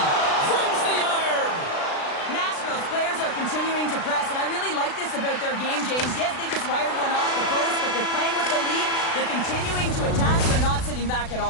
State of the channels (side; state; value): right; late; 36 ms